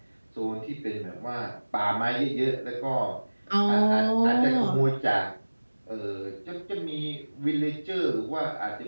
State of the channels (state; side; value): inverted; both; correlation -1.00